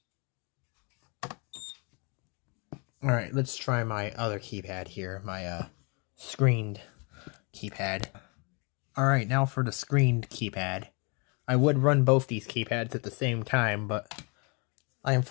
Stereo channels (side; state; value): right; quieter; 32.6 dB